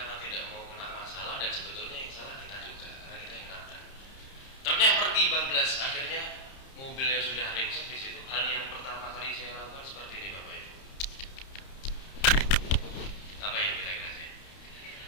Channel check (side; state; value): right; late; 30 ms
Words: karena tidak mau kena masalah, dan sebetulnya yang salah kita juga karena kita yang nabrak. Truknya pergi bablas, akhirnya mobilnya sudah ringsek di situ. Hal yang pertama kali saya lakukan seperti ini, Bapak Ibu. Apa yang kira-kira saya?